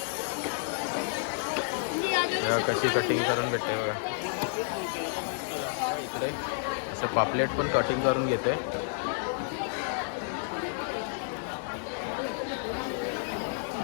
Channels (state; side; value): silent; right; 58 dB below the other